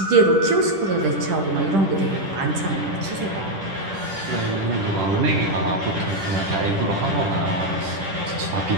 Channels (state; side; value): late; left; 10 ms